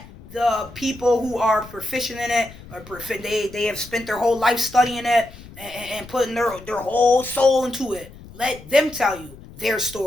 the people who are proficient in it, or they have spent their whole life studying it and putting their whole soul into it. Let them tell you their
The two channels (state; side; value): noise; left; rumble, 18 dB below the sound